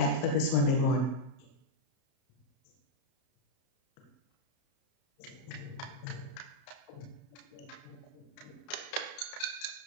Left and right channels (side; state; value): right; late; 32 ms